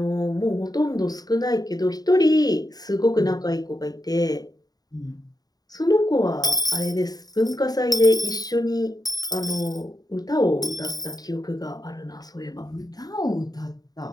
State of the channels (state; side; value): late; right; 0.18 ms